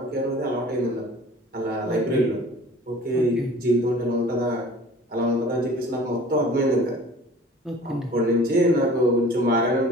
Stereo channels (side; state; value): both; normal; correlation 0.46